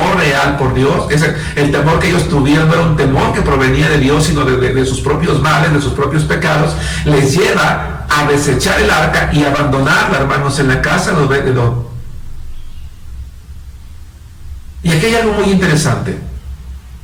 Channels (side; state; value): both; identical; correlation 1.00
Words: real por Dios, el temor que ellos tuvieron no era un temor que provenía de Dios, sino de sus propios males, de sus propios pecados, les lleva a desechar el arca y abandonarla, hermanos, en la casa de Obed-Edom. Y aquí hay algo muy interesante.